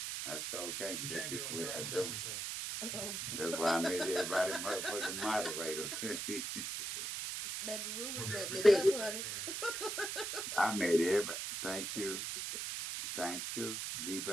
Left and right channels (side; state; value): right; noise; hiss, 3 dB below the sound